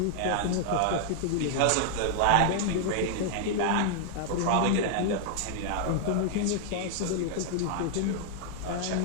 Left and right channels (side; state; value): both; different; correlation 0.00